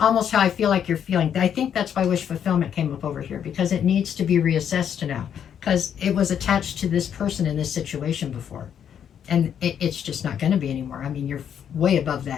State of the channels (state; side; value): quieter; right; 8.7 dB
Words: how I feel like you're feeling. I think that's why wish fulfillment came up over here, because it needs to be reassessed now, because it was attached to this person in this situation before. And it's just not going to be anymore. I mean, you're way above